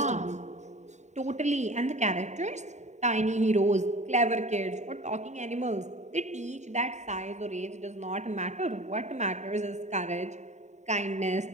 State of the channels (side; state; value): left; late; 0.34 ms